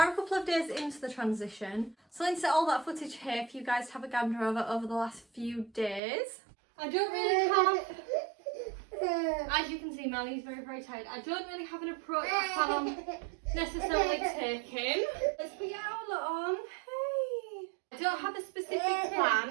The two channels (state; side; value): drops out; left; at 6.0 s